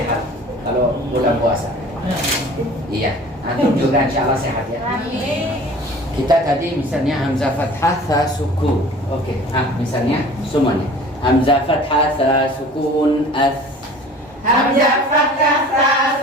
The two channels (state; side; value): normal; both; correlation 0.45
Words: kalau bulan puasa. Iya, antum juga insya Allah sehat ya. Kita tadi misalnya hamzah fathah tha sukun. Oke. Misalnya semuanya. Hamzah fathah tha sukun as. Hamzah fathah ta